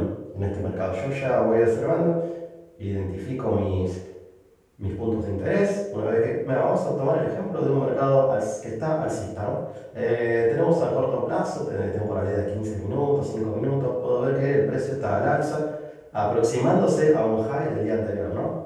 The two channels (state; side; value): identical; both; correlation 1.00